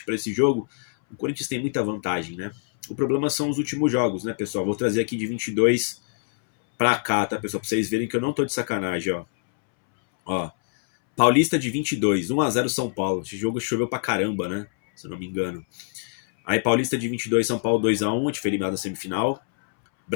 para esse jogo, o Corinthians tem muita vantagem, né? O problema são os últimos jogos, né, pessoal? Vou trazer aqui de 22 pra cá, tá, pessoal? Pra vocês verem que eu não tô de sacanagem, ó. Paulista de 22, 1-0 São Paulo. Esse jogo choveu pra caramba, né? Se eu não me engano. Aí Paulista de 22, São Paulo 2-1, a gente foi eliminado na semifinal.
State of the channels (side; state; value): right; silent; 62 dB below the other